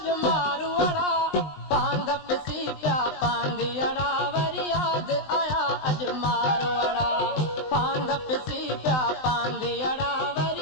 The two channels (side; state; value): right; late; 20 ms